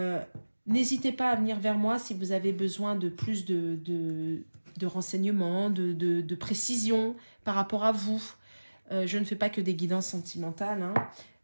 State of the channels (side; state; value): both; inverted; correlation -1.00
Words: N'hésitez pas à venir vers moi si vous avez besoin de plus de renseignements, de précision par rapport à vous. Je ne fais pas que des guidances sentimentales.